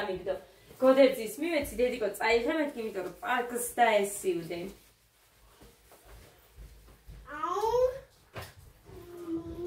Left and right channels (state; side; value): identical; both; correlation 1.00